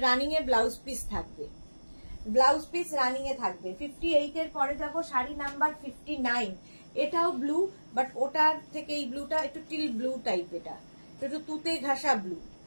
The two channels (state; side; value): inverted; both; correlation -1.00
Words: রানিং এ ব্লাউজ পিস থাকবে, ব্লাউজ পিস রানিং এ থাকবে। 58 এর পরে যাব শাড়ি নাম্বার 59, এটাও ব্লু, বাট ওটার থেকে এই ব্লুটা একটু টিল ব্লু টাইপ, এটা একটু তুতে ঘাসা ব্লু।